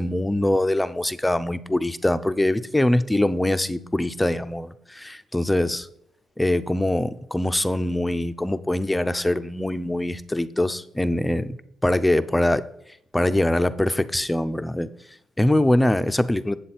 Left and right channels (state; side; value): normal; both; correlation 0.98